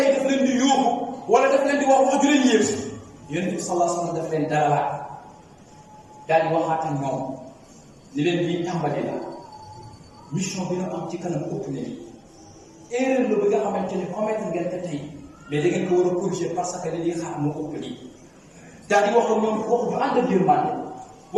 daf leen di yóbbu wala daf leen di wax ju leen yéem yonent bi sallallahu alayhi wa sallam daf leen dalalaat daal di waxaat ak ñoom ni leen di tàmbali la mission bi nga am ci kanam ëpp na lii erreur la bi nga xamante ni commettre ngeen ko tey mais da ngeen ko war a corriger parce que li ñuy xaar moo ëpp lii daal di wax ak ñoom wax ju ànd ak yërmande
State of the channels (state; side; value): identical; both; correlation 1.00